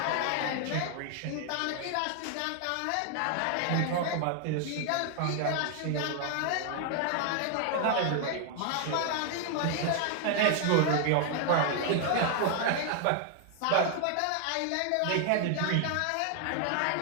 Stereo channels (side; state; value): both; different; correlation 0.00